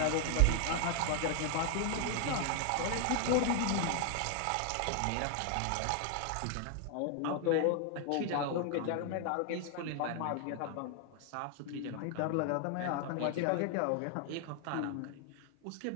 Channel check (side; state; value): both; different; correlation 0.00